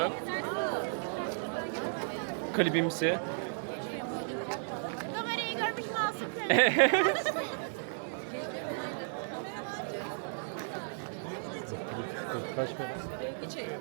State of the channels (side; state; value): left; silent; digital silence